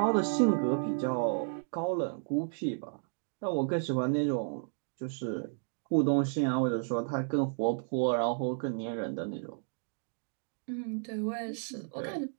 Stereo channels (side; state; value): left; silent; digital silence